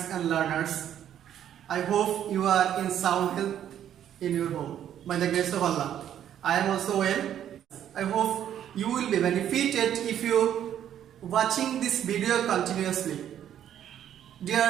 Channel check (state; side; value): quieter; left; 10.4 dB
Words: and learners. I hope you are in sound health in your home. By the grace of Allah, I am also well. I hope you will be benefited if you watching this video continuously.